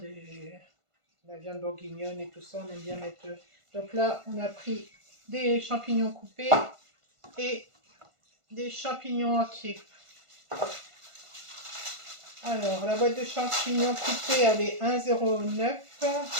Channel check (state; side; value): late; left; 1.5 ms